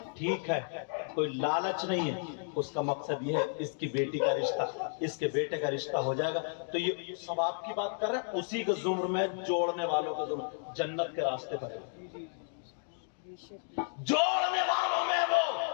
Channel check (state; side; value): silent; right; 56 dB below the other